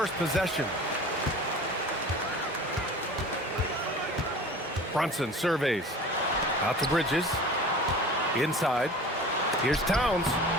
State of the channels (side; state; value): both; normal; correlation 0.40